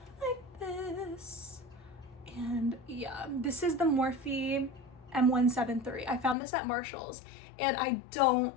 like this. And yeah, this is the Morphe M173. I found this at Marshall's, and I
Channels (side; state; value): right; drops out; at 6.4 s